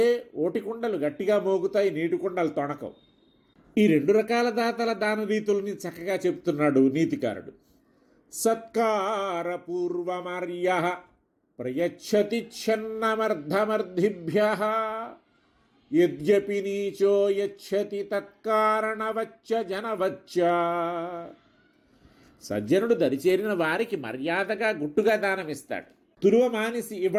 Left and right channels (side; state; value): both; identical; correlation 1.00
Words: ఓటికుండలు గట్టిగా మోగుతాయి, నీటి కుండలు తొణకవు. ఈ రెండు రకాల దాతల దాన రీతుల్ని చక్కగా చెప్తున్నాడు నీతికారుడు. సత్కారపూర్వమర్య ప్రయచ్చతి ఛన్నమర్ధమర్ధిభ్య యద్యపి నీచో యచ్చతి తత్కారణవచ్చ జనవచ్చ. సజ్జనుడు దరిచేరిన వారికి మర్యాదగా గుట్టుగా దానమిస్తాడు. తురువ మానిసి